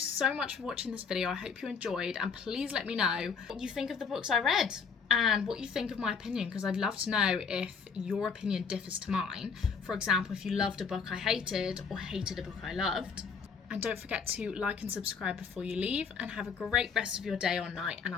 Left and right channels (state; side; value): quieter; right; 5.8 dB